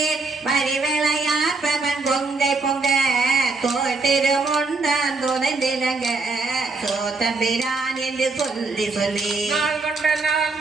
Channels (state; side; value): quieter; left; 3.8 dB